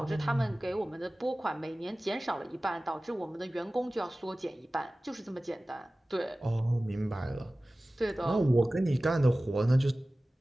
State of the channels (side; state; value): both; normal; correlation 0.97